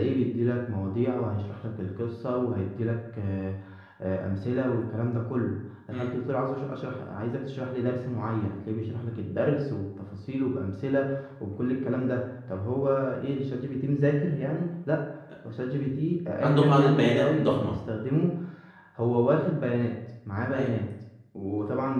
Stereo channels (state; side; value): identical; both; correlation 1.00